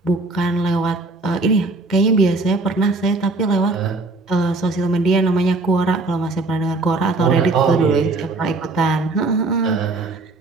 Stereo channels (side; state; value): left; quieter; 3.3 dB